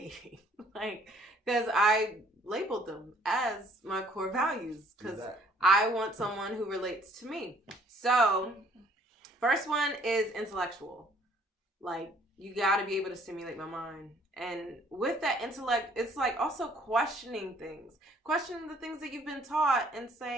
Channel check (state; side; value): normal; both; correlation 0.60